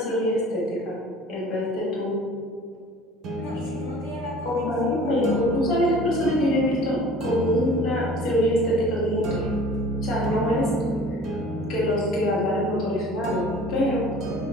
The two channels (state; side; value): normal; both; correlation 0.46